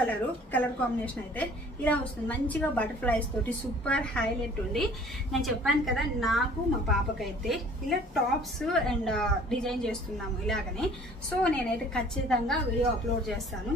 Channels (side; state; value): both; normal; correlation 0.52